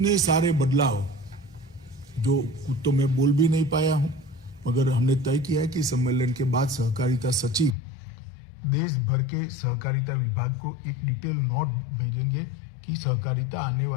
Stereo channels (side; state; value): right; drops out; at 7.8 s